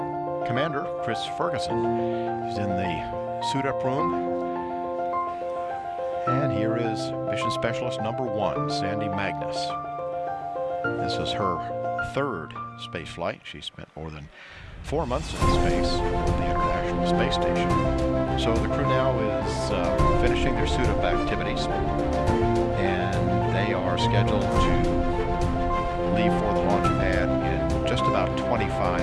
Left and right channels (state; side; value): identical; both; correlation 1.00